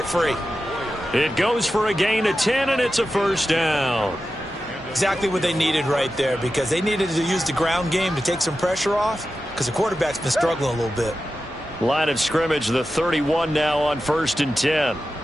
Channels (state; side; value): normal; both; correlation 0.92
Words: free. It goes for a gain of 10, and it's a 1st down. Exactly what they needed right there, because they needed to use the ground game to take some pressure off, because the quarterback's been struggling a little bit. Line of scrimmage, the 31 now on 1st and 10.